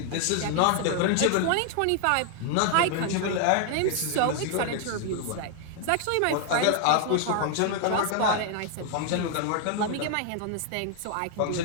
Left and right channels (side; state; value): both; different; correlation 0.00